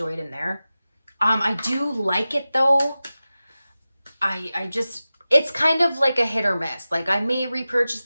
it in there. I do like it though. I just, it's kind of like a hit or miss. Like I may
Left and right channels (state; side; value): inverted; both; correlation -0.95